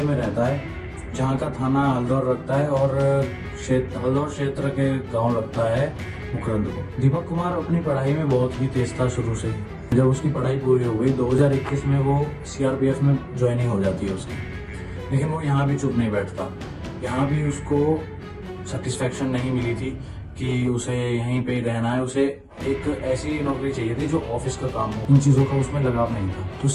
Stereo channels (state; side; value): identical; both; correlation 1.00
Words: में रहता है, जहाँ का थाना हल्दौर रखता है और हल्दौर क्षेत्र के गांव लगता है मुकरंद को। दीपक कुमार अपनी पढ़ाई में बहुत ही तेज था शुरू से। जब उसकी पढ़ाई पूरी हो गई 2021 में वो सीआरपीएफ में ज्वाइनिंग हो जाती है उसकी। लेकिन वो यहाँ भी चुप नहीं बैठता। यहाँ भी उसको सेटिस्फेक्शन नहीं मिली थी कि उसे यहीं पे रहना है। उसे एक ऐसी नौकरी चाहिए थी जो ऑफिस का काम हो। इन चीजों का उसमें लगाव नहीं था। तो